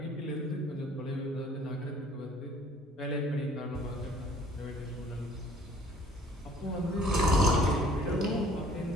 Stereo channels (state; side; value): normal; both; correlation 0.55